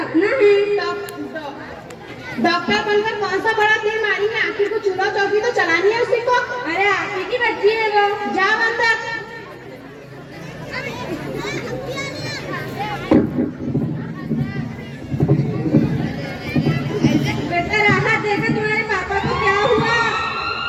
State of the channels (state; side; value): identical; both; correlation 1.00